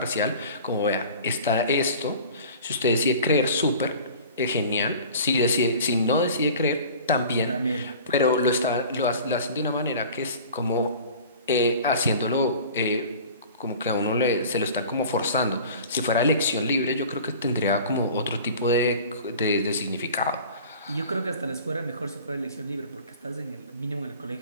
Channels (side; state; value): both; inverted; correlation -0.42